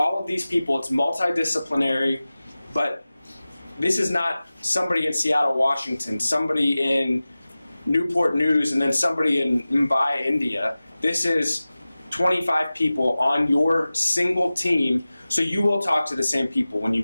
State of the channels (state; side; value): inverted; both; correlation -0.97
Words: of these people, it's multidisciplinary, but this is not somebody in Seattle, Washington, somebody in Newport News, and then somebody in Mumbai, India. This is 25 people on your single team, so you will talk to the same people when you